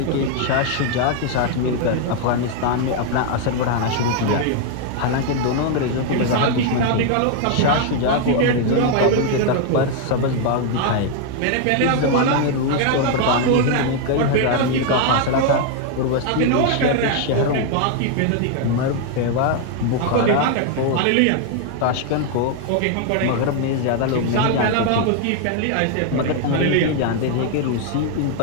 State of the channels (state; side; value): different; both; correlation 0.00